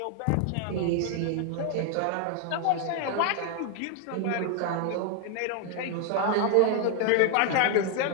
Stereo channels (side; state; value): both; different; correlation 0.00